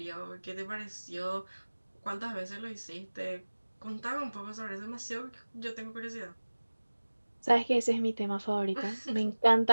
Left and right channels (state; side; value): inverted; both; correlation -1.00